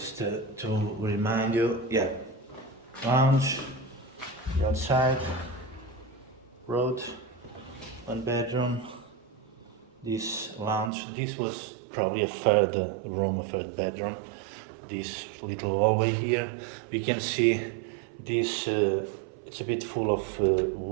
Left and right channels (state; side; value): drops out; left; at 10.9 s